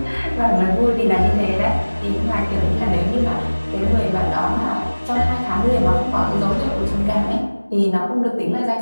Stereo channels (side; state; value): both; inverted; correlation -1.00